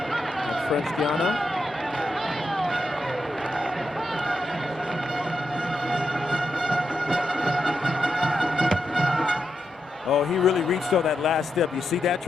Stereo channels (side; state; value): both; normal; correlation 0.85